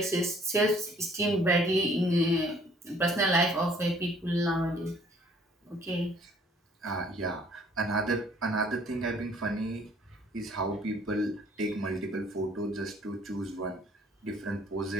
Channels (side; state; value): both; normal; correlation 0.59